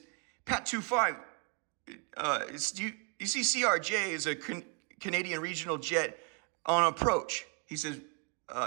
Pat 25, you see CRJ is a Canadian regional jet on approach. He says,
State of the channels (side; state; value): left; quieter; 34.8 dB